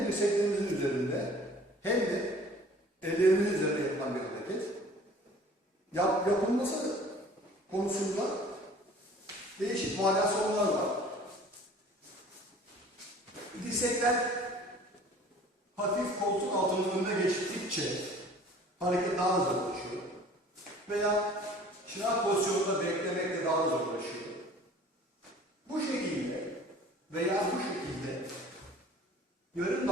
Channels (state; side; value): normal; both; correlation 0.48